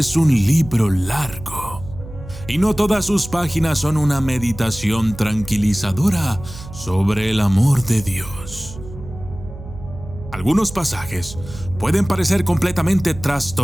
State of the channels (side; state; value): right; noise; hum, 14 dB below the sound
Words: un libro largo, y no todas sus páginas son una meditación tranquilizadora sobre el amor de Dios. Algunos pasajes pueden parecer completamente